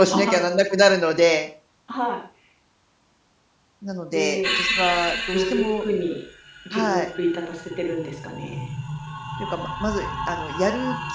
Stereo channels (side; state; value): both; identical; correlation 1.00